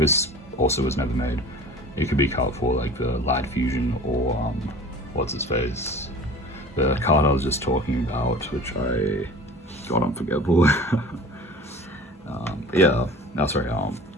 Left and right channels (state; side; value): normal; both; correlation 0.41